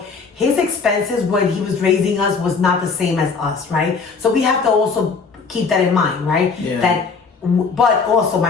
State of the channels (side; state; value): right; quieter; 4.9 dB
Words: his expenses when he was raising us was not the same as us, right? So we have to also keep that in mind, right? Yeah. But also